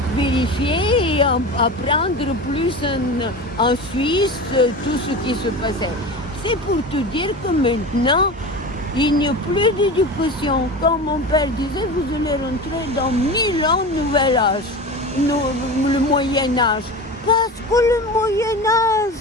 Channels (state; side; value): normal; both; correlation 0.30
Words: vérifier et apprendre plus en Suisse tout ce qui se passait. C'est pour te dire que maintenant, il n'y a plus d'éducation. Comme mon père disait, vous allez rentrer dans 1000 ans nouvel âge, le Moyen Âge. Parce que le Moyen Âge